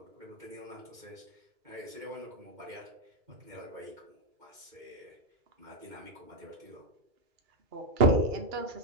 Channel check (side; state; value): left; late; 2.3 ms